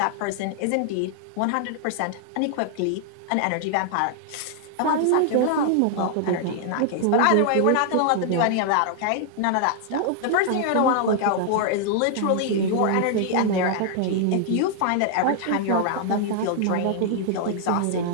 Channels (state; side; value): different; both; correlation -0.01